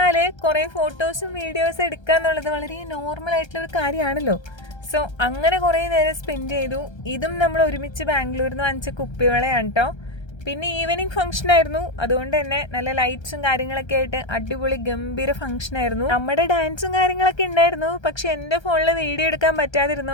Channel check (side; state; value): right; late; 1.3 ms